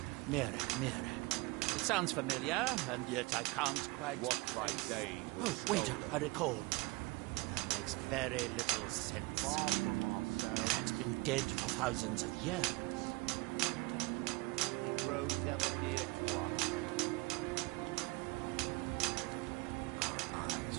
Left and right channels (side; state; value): left; quieter; 24.9 dB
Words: Mirak. It sounds familiar, and yet I can't quite... What by day Oh, wait, I recall. That makes very little sense. Mirak's been dead for thousands of years. He grows ever near to us. Our eyes